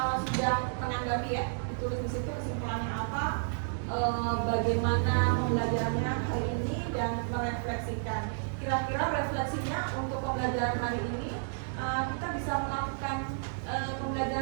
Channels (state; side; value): silent; left; digital silence